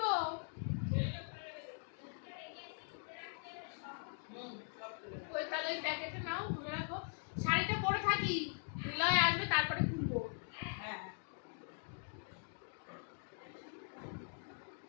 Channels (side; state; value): right; silent; 50 dB below the other